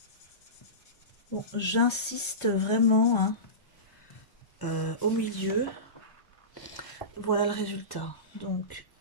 Bon, j'insiste vraiment hein, au milieu. Voilà le résultat. Donc,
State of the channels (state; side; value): late; right; 1.2 ms